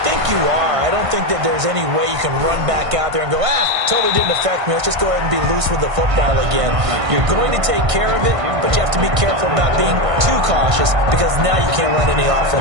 think you are. I don't think that there's any way you can run back out there and go, totally didn't affect me. Let's just go ahead and be loose with the football again. You're going to take care of it, but you have to be careful about being too cautious because now you can't run any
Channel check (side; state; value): left; late; 1.5 ms